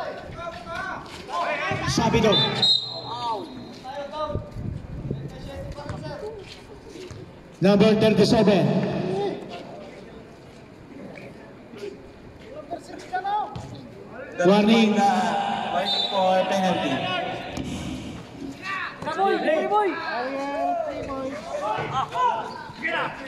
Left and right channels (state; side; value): identical; both; correlation 1.00